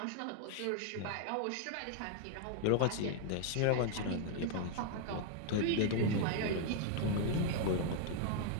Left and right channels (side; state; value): both; different; correlation 0.00